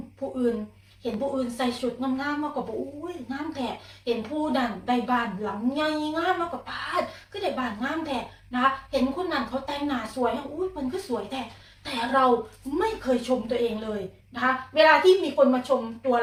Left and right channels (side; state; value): both; identical; correlation 1.00